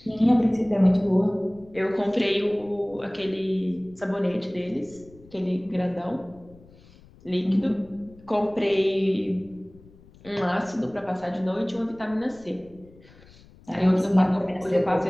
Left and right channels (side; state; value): left; noise; rumble, 25 dB below the sound